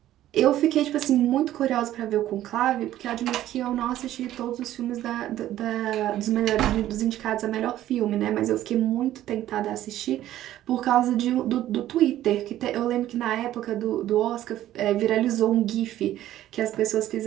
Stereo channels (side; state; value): left; quieter; 13.2 dB